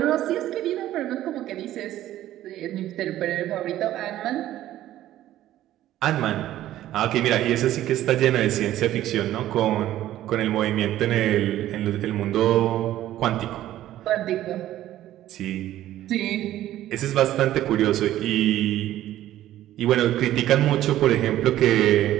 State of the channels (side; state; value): left; quieter; 13.5 dB